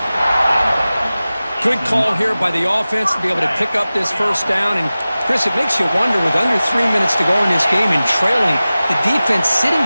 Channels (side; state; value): both; inverted; correlation -0.97